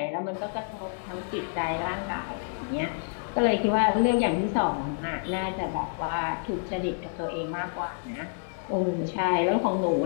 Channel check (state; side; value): silent; right; digital silence